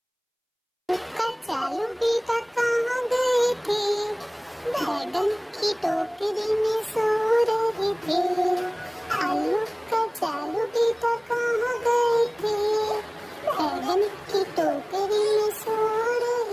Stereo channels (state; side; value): identical; both; correlation 1.00